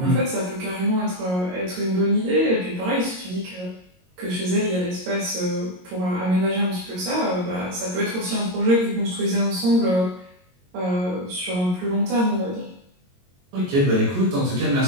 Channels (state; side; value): late; left; 22 ms